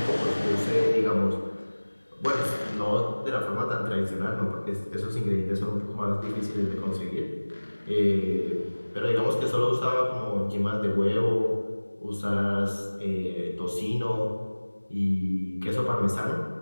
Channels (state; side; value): inverted; both; correlation -1.00